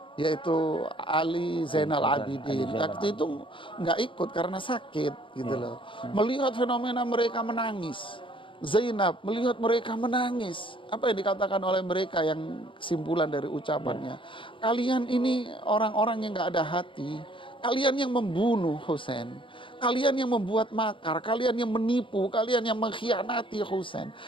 yaitu Ali Zainal Abidin, waktu itu nggak ikut karena sakit gitu loh. Melihat fenomena mereka menangis. Zainab melihat mereka menangis. Apa yang dikatakan oleh mereka yang kesimpulan dari ucapannya? Kalian ini orang-orang yang nggak ada hati. Kalian yang membunuh Husain, kalian yang membuat makar, kalian yang menipu, kalian yang mengkhianati Husain,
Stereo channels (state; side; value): late; right; 0.25 ms